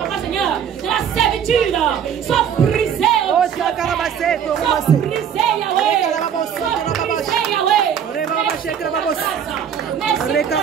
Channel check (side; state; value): left; quieter; 8.3 dB